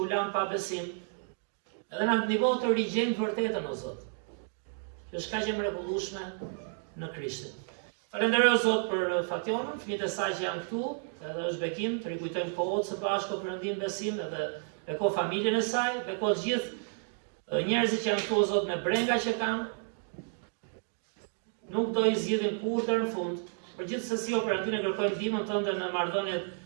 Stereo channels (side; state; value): left; silent; 57 dB below the other